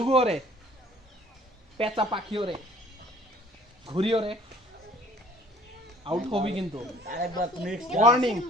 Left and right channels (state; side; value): normal; both; correlation 0.54